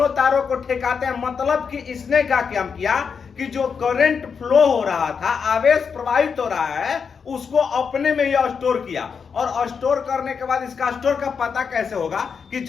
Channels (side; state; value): right; quieter; 6.1 dB